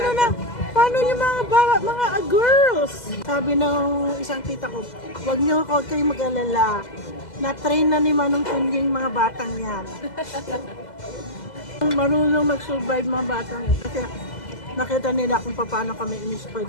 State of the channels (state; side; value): late; right; 2.0 ms